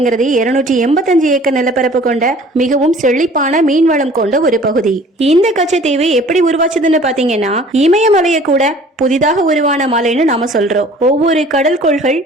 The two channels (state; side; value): normal; both; correlation 0.50